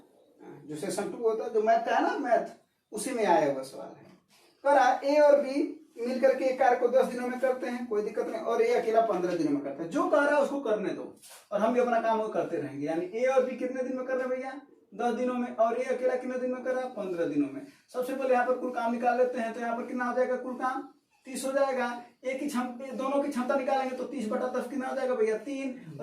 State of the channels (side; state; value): both; identical; correlation 1.00